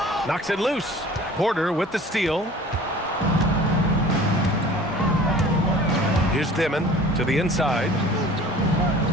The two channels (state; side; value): normal; both; correlation 0.45